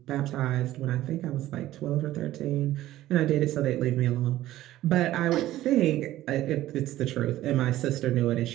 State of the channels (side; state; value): left; quieter; 14.8 dB